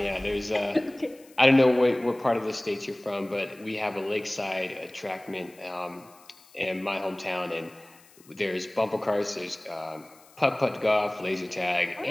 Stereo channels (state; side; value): noise; left; hiss, 26 dB below the sound